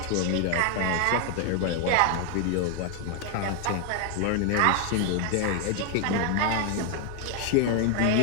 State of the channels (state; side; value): different; both; correlation 0.00